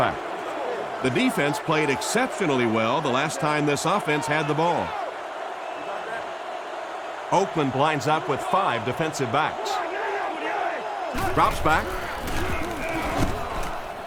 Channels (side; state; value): both; identical; correlation 1.00